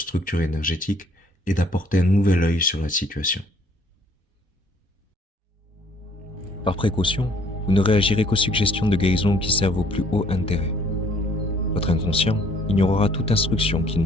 énergétiques et d'apporter un nouvel œil sur la situation. Par précaution, vous ne réagirez qu'aux suggestions de guérison qui servent au plus haut intérêt. Votre inconscient ignorera toute instruction qui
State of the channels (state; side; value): normal; both; correlation 0.61